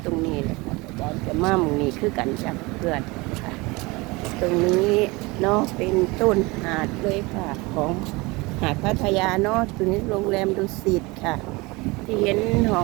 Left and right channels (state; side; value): quieter; left; 24.2 dB